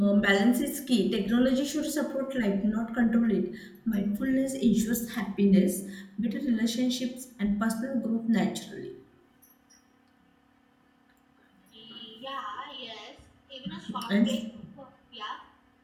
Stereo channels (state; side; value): identical; both; correlation 1.00